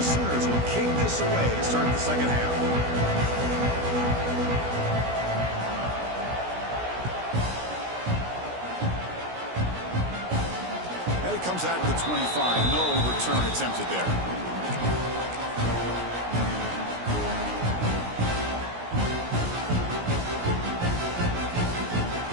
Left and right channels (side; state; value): left; late; 17 ms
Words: Sooners will kick this away to start the second half. And it comes out to the 25. No return attempted there.